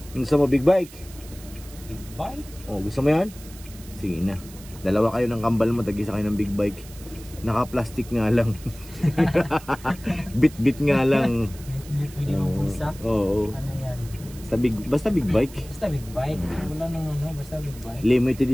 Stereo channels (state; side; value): noise; right; hiss, 19 dB below the sound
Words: Gusto mo big bike? Big bike? Gusto mo yan? Sige na. Dalawa kayo ng kambal mo, tag-isa kayo ng big bike. Naka-plastic nga lang. Bit-bit nga lang. Bit-bit, pwede mong pulsa? Oo. Ano yan? Basta big bike. Basta big bike. Wala nang basta big bike. Limited